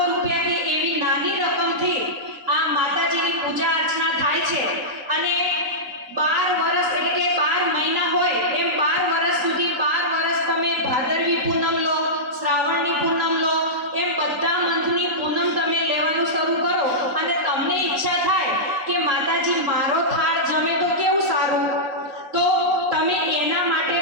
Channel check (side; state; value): left; late; 3.9 ms